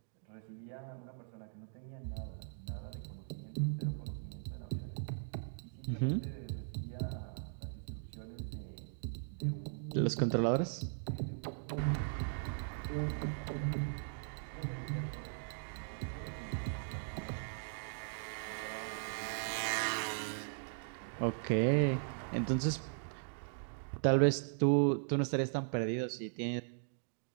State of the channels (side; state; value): left; silent; digital silence